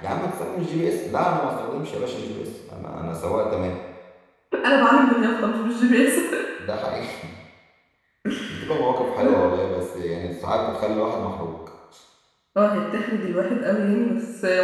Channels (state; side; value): identical; both; correlation 1.00